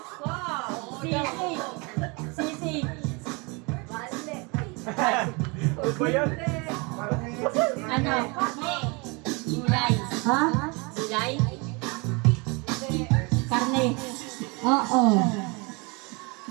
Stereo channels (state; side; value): quieter; left; 29.1 dB